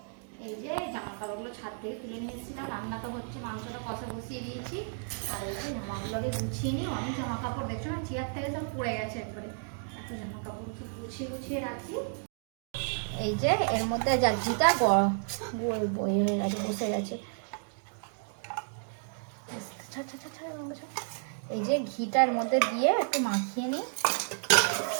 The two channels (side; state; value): left; silent; 56 dB below the other